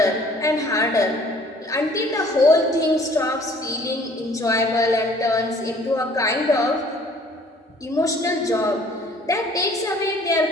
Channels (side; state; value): both; normal; correlation 0.55